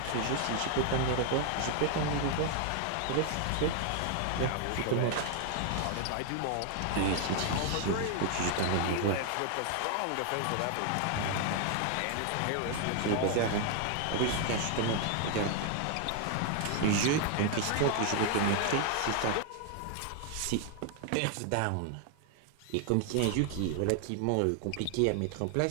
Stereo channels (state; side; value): different; both; correlation 0.00